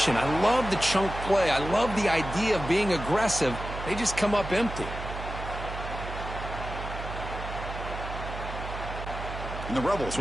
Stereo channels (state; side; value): noise; right; hum, 8 dB below the sound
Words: I love the chunk play. I love the idea of being aggressive. They just come up empty. And the Rebels